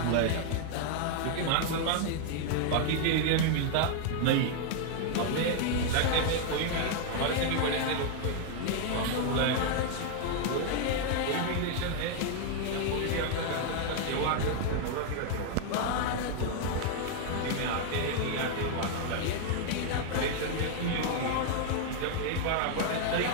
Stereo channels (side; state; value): both; different; correlation 0.00